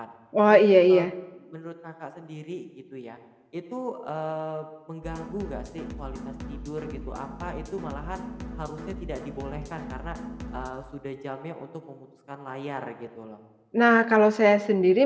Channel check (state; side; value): identical; both; correlation 1.00